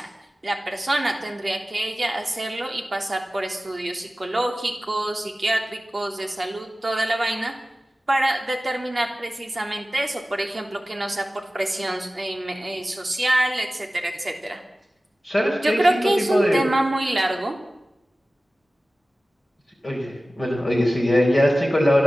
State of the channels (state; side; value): normal; both; correlation 0.96